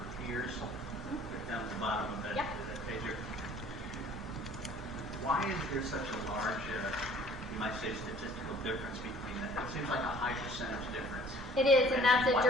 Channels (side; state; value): both; normal; correlation 0.52